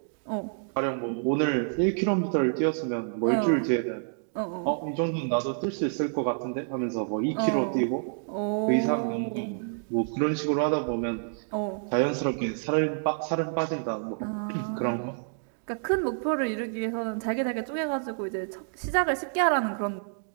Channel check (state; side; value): silent; left; digital silence